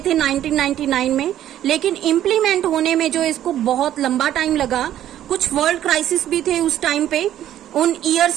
थे 1999 में, लेकिन इम्प्लीमेंट होने में जो इसको बहुत लंबा टाइम लगा। कुछ वर्ल्ड क्राइसिस भी थे उस टाइम पे, उन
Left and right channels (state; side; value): quieter; left; 11.9 dB